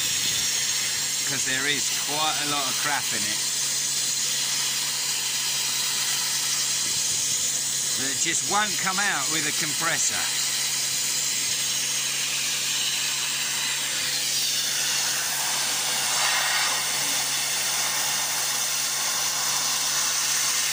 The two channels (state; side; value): identical; both; correlation 1.00